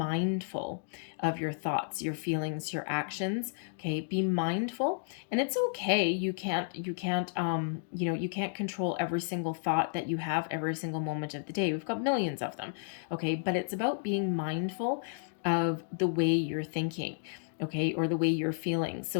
of your thoughts, your feelings, your actions. Okay, be mindful. And it's okay. You can't control every single thought that you have every single moment of the day. We've got millions of them. Okay, but it's about being mindful of the way you're thinking, okay, or the way you're feeling.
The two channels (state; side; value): silent; right; digital silence